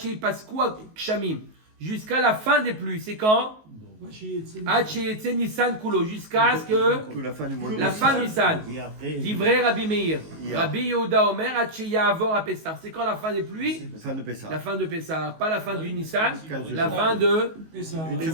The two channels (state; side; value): late; left; 19 ms